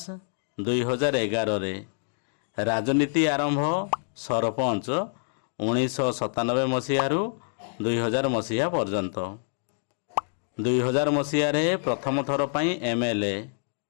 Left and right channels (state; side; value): silent; right; digital silence